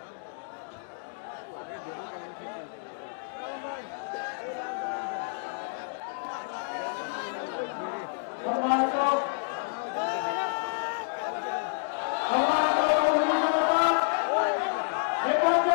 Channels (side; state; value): right; silent; digital silence